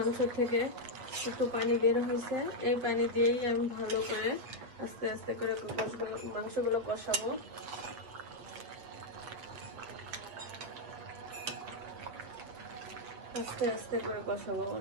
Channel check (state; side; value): late; left; 8.2 ms